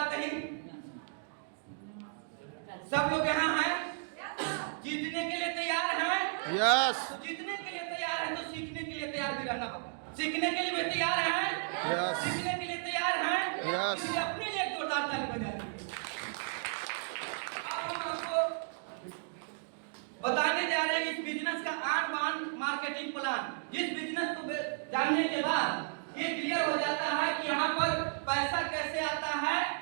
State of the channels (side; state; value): left; silent; digital silence